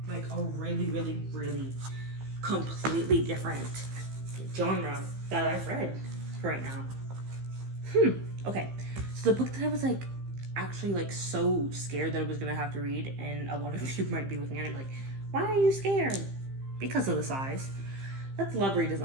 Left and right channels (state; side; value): late; left; 15 ms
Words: Like, a really, really, really completely different genre that I've read right now. Okay. So, the book that I was, like, actually, like, so scared that I was gonna have to read, and a lot of you might be looking at it like, why are you scared? Because of the size. That's Love